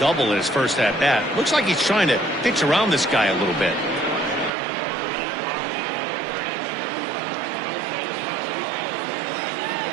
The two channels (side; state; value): left; drops out; at 4.5 s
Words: in his first at-bat, looks like he's trying to pitch around this guy a little bit.